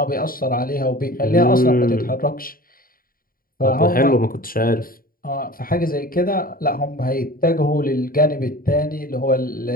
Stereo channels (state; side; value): late; right; 0.42 ms